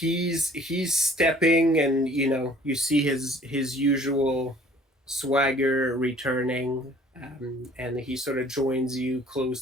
stepping, and you see his usual swagger returning, and he sort of joins you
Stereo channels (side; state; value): both; normal; correlation 0.54